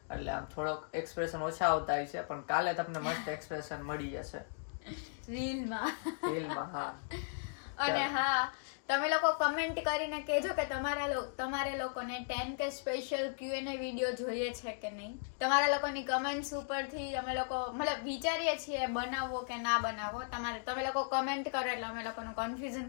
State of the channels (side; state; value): right; silent; digital silence